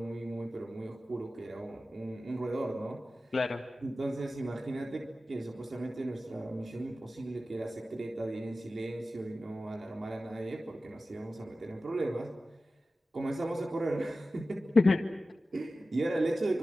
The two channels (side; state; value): both; normal; correlation 0.94